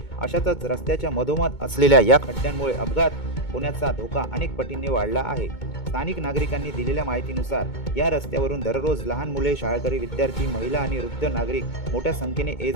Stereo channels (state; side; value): late; right; 2.2 ms